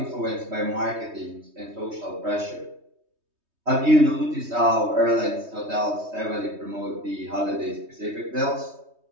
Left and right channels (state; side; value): late; left; 3.2 ms